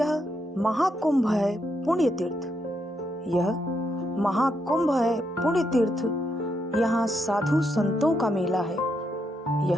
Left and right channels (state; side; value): normal; both; correlation 0.79